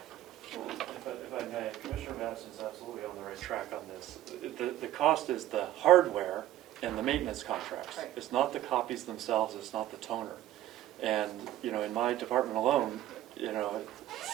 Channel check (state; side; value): quieter; left; 13.6 dB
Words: If I may, Commissioner Madison's absolutely on the right track on this. The cost is the hardware and the maintenance contracts. Right. It's not the copies themselves, it's not the toner. And, in my department alone,